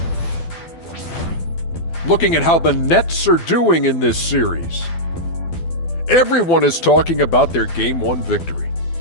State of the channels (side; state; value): right; late; 12 ms